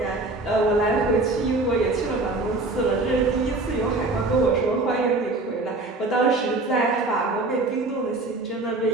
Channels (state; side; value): quieter; left; 3.1 dB